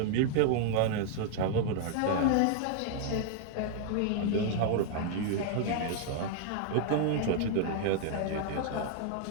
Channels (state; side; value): different; both; correlation 0.00